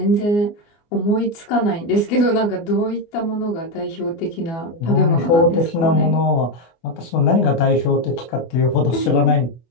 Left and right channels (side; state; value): right; late; 24 ms